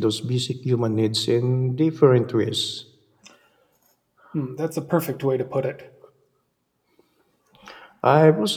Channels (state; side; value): identical; both; correlation 1.00